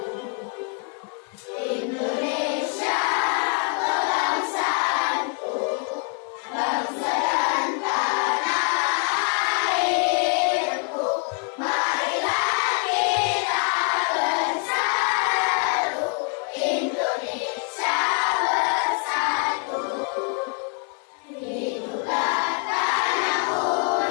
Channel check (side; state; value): right; quieter; 39.7 dB